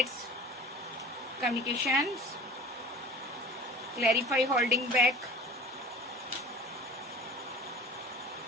communications, clarify holding back,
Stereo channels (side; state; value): both; normal; correlation 0.40